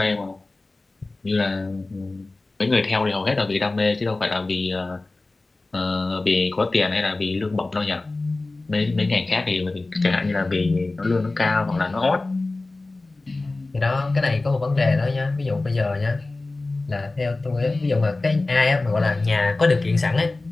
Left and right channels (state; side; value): quieter; right; 3.2 dB